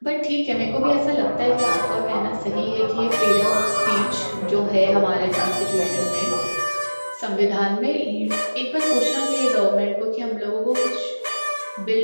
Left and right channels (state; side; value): inverted; both; correlation -1.00